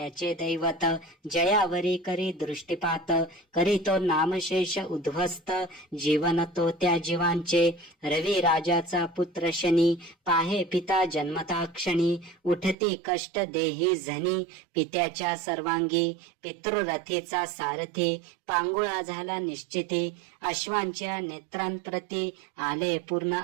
दैवत जयावरी करी दृष्टीपात। करीतो नामशेष उद्ध्वस्त जीवन तो त्या जीवांचे। रवी राजाचा पुत्र शनी पाहे पिता जन्मता क्षणी। उठती कष्ट देही झनी पित्याच्या सर्वांगी। पितृरथीचा सारथी पांगुळा झाला निश्चिती। अश्वांच्या नेत्रांप्रती आले पूर्ण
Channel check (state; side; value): drops out; left; at 12.8 s